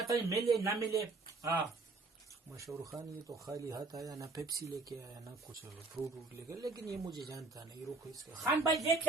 नहीं मिले ना मिले। हाँ मशहूर खान ये तो खाली हाथ आया, ना पेप्सी लेके आया ना कुछ फ्रूट वूट लेके, लेकिन ये मुझे जानता नहीं। रुको इसका खान भाई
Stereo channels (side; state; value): left; quieter; 3.6 dB